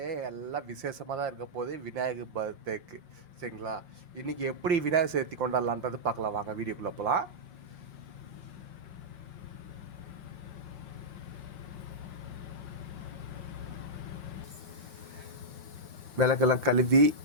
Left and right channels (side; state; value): left; late; 5.8 ms